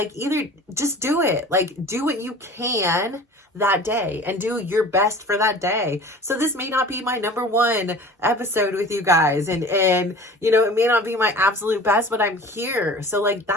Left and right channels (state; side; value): normal; both; correlation 0.42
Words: either just do it. Like, do what you can that day and do your best for that day. So this may not be my number one episode with you guys, and it may not be my absolute best, but I'm here. So like,